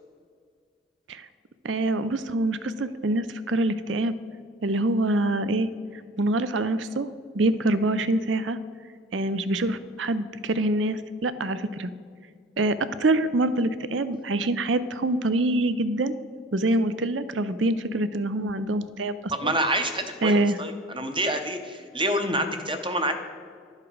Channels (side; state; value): both; normal; correlation 0.42